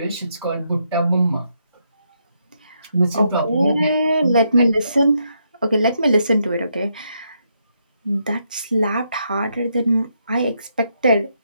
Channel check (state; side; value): inverted; both; correlation -0.78